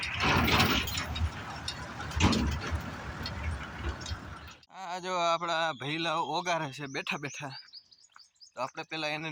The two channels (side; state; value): both; identical; correlation 1.00